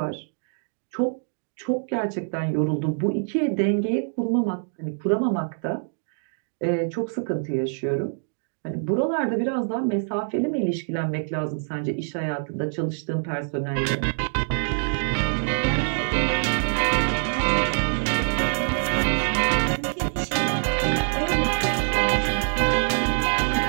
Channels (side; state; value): left; silent; digital silence